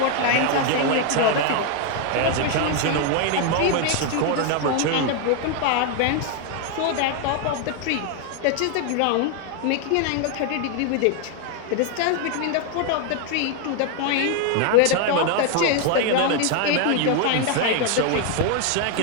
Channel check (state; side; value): different; both; correlation 0.01